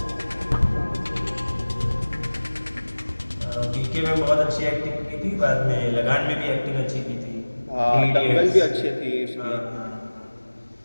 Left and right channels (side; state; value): both; inverted; correlation -1.00